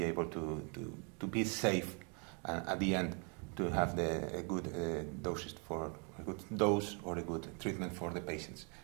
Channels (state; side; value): quieter; left; 36.6 dB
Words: able to be safe, and at the end to have a good doses for a good dose or a good treatment for the patients.